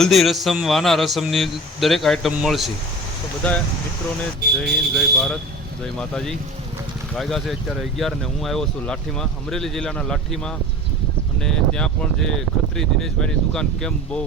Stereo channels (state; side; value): normal; both; correlation 0.36